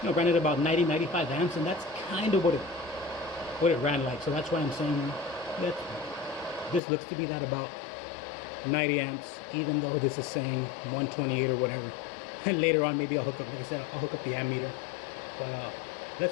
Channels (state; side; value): drops out; right; at 6.8 s